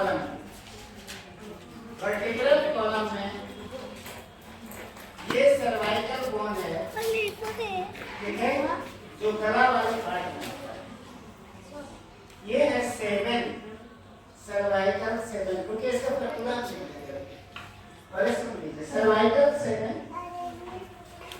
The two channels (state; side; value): identical; both; correlation 1.00